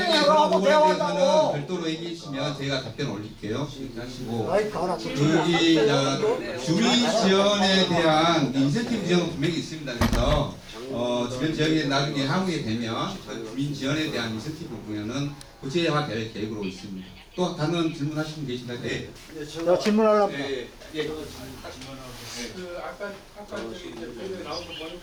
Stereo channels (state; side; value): identical; both; correlation 1.00